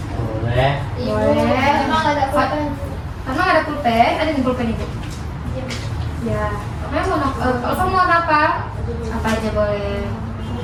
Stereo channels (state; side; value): identical; both; correlation 1.00